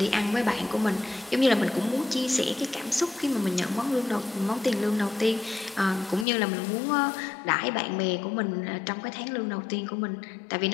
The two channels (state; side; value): drops out; right; at 6.2 s